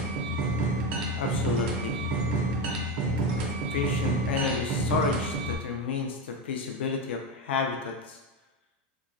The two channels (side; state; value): both; normal; correlation 0.14